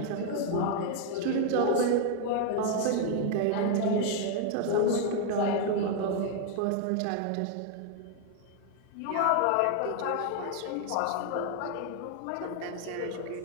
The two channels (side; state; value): both; different; correlation 0.00